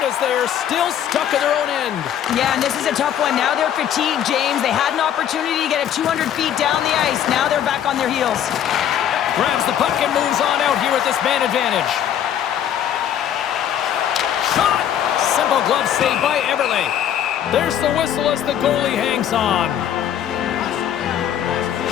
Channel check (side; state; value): right; quieter; 10.0 dB